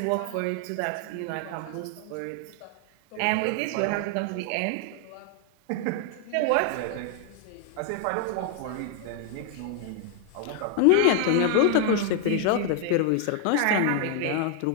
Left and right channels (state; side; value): different; both; correlation 0.00